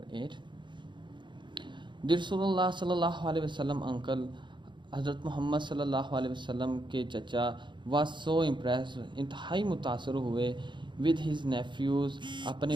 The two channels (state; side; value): late; left; 0.23 ms